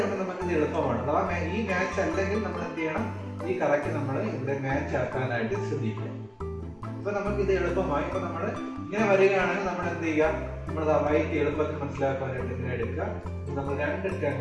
നമുക്ക് ഇത് എളുപ്പമാണ്. അഥവാ ഈ മാച്ച് അല്ലെങ്കിൽ നമ്മൾ എന്ത് ചെയ്യണം, ഈ കറക്റ്റ് നമ്മൾ ഇവിടെ മാച്ച് ആക്കാനായിട്ട് ശ്രദ്ധിക്കുക. ഇപ്പൊ നമുക്ക് ഇത് എളുപ്പമായി. ഇപ്പൊ നമ്മൾ ഇങ്ങനെ വരികയാണെങ്കിൽ നമ്മൾ എന്ത് ചെയ്യുക, നമ്മൾ വൈറ്റ് എളുപ്പത്തിൽ മനസ്സിലാക്കാനായിട്ട് ഇങ്ങനെ എടുക്കുക. നമ്മൾ 2 ടേൺ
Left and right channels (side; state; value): both; identical; correlation 1.00